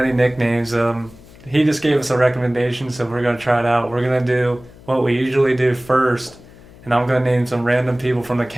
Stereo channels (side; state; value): left; noise; hum, 22 dB below the sound